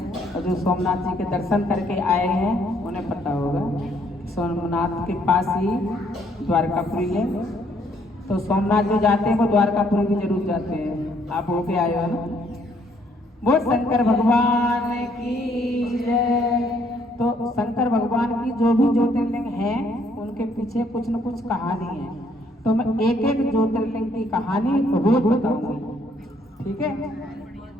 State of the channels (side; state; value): both; normal; correlation 0.67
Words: और जो सोमनाथ जी के दर्शन करके आए हैं उन्हें पता होगा सोमनाथ के पास ही द्वारकापुरी है। तो सोमनाथ जो जाते हैं वो द्वारकापुरी भी जरूर जाते हैं। आप होके आए हो ना। वो शंकर भगवान की जय। तो शंकर भगवान की जो भी ज्योतिर्लिंग है उनके पीछे कुछ न कुछ कहानी है। तो मैं एक एक ज्योतिर्लिंग की कहानी रोज बताऊंगी, ठीक है।